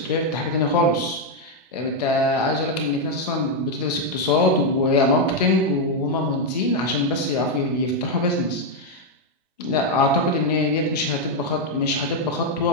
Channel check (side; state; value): both; normal; correlation 0.01